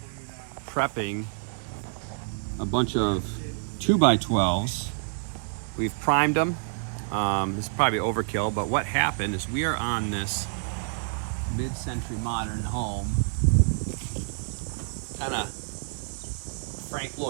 prepping a bunch of 2x12s. We've primed them. This is probably overkill, but what happened is we are on this mid-century modern home, kind of Frank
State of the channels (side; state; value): left; silent; digital silence